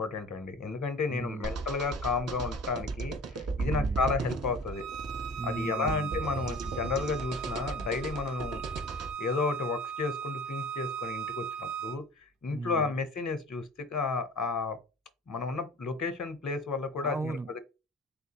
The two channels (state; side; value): normal; both; correlation 0.44